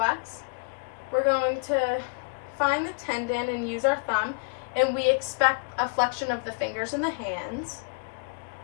We're going to find the tendon and use our thumb, and we expect a flexion of the fingers and the hands.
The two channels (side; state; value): right; quieter; 36.2 dB